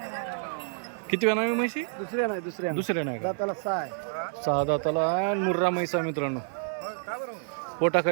किती वेळा नाही म्हशी? दुसऱ्या नाही का? सहा दाताला आहे. मुर्रा म्हैसा मित्रांनो.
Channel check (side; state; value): left; silent; 59 dB below the other